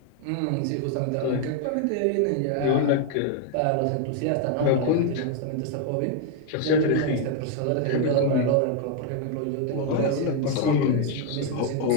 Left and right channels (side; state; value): both; different; correlation 0.01